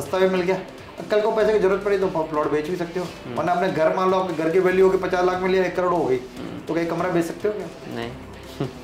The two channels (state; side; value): identical; both; correlation 1.00